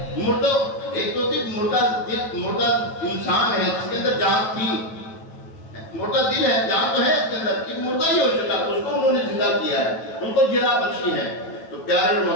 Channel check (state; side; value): late; right; 9.1 ms